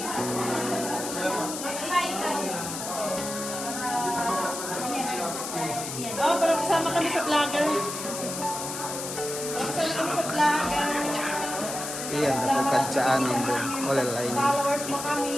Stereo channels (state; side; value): noise; left; hiss, 6 dB below the sound